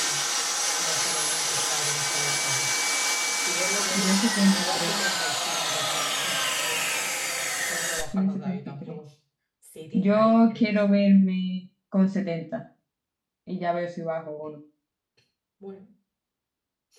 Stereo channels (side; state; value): both; identical; correlation 1.00